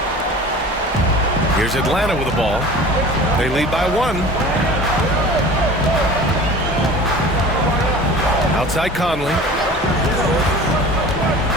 Here's Atlanta with the ball. They lead by 1. Outside Conley.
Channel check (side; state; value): both; normal; correlation 0.40